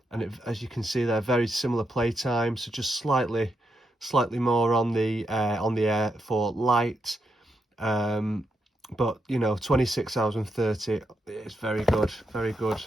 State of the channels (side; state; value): both; normal; correlation 0.82